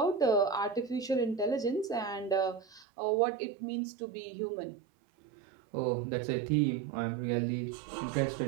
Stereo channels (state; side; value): drops out; left; at 2.9 s